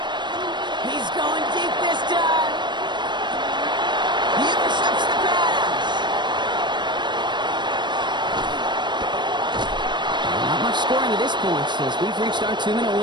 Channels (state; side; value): late; left; 0.22 ms